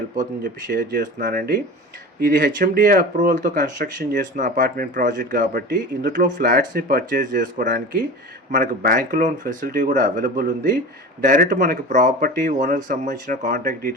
అవుతుందని చెప్పి షేర్ చేస్తున్నానండి. ఇది హెచ్ఎండిఏ అప్రూవల్తో కన్స్ట్రక్షన్ చేస్తున్న అపార్ట్మెంట్ ప్రాజెక్ట్ కాబట్టి ఇందులో ఫ్లాట్స్ని పర్చేస్ చేసుకోవడానికి మనకు బ్యాంక్ లోన్ ఫెసిలిటీ కూడా అవైలబుల్ ఉంది. డైరెక్ట్ మనకి ప్రాపర్టీ ఓనర్కి సంబంధించిన కాంటాక్ట్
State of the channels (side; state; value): both; normal; correlation 0.33